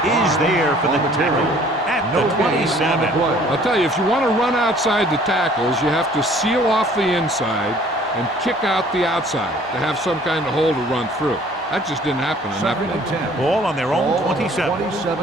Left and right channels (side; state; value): both; normal; correlation 0.55